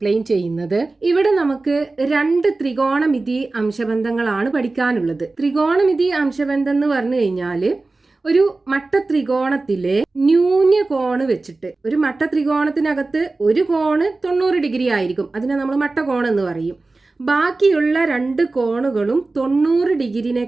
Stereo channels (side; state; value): left; quieter; 3.4 dB